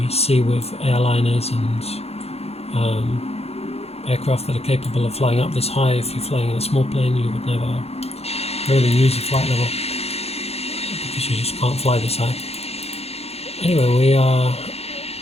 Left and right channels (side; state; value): right; late; 0.30 ms